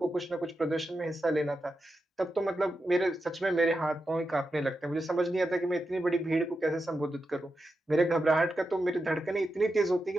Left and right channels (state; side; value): normal; both; correlation 0.88